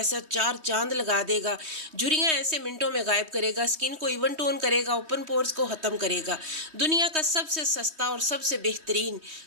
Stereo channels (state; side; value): late; left; 3.2 ms